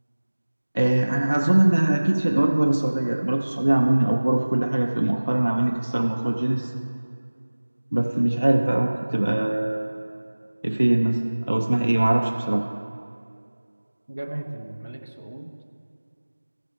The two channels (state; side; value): inverted; both; correlation -1.00